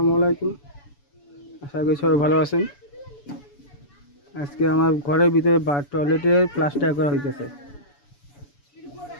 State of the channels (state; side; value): late; right; 7.0 ms